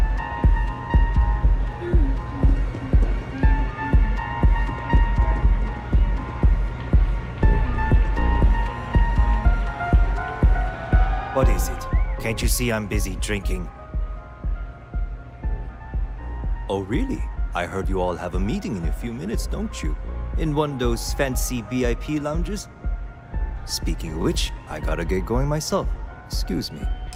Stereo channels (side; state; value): both; identical; correlation 1.00